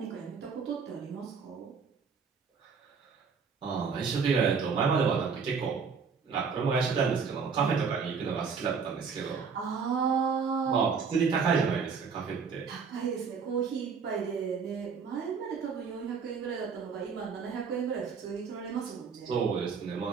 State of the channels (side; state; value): left; quieter; 5.7 dB